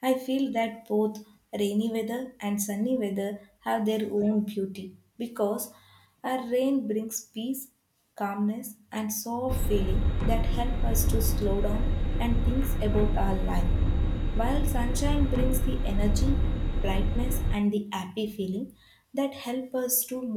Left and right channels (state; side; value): identical; both; correlation 1.00